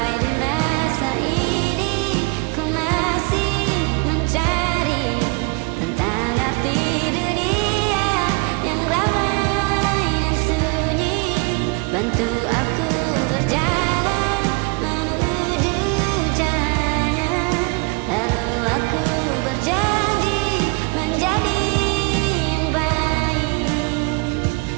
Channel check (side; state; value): left; quieter; 29.8 dB